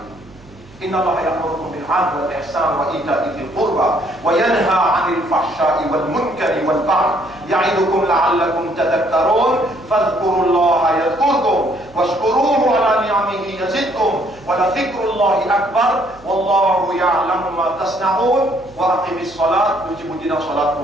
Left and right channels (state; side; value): noise; right; hum, 24 dB below the sound